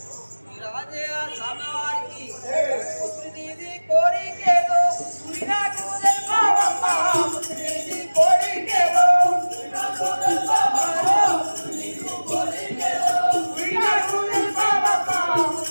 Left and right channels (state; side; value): inverted; both; correlation -1.00